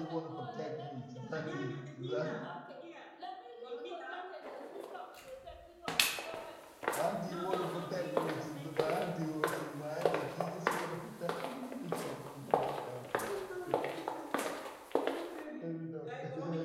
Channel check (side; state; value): both; identical; correlation 1.00